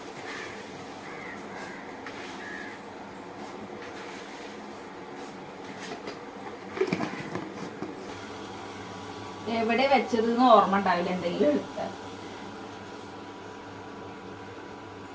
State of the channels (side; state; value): both; identical; correlation 1.00